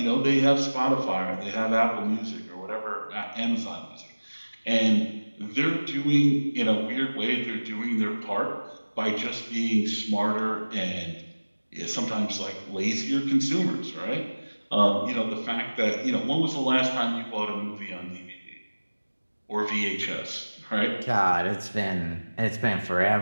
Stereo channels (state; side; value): inverted; both; correlation -1.00